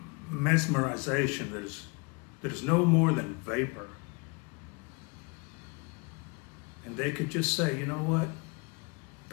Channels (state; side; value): quieter; right; 30.6 dB